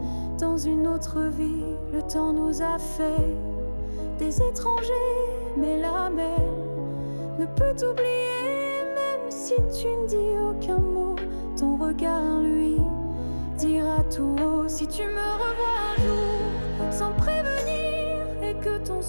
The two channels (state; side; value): inverted; both; correlation -1.00